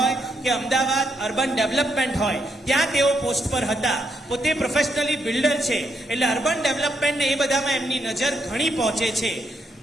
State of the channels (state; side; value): normal; both; correlation 0.78